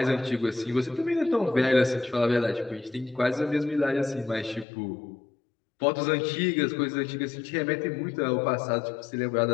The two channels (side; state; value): right; drops out; at 4.7 s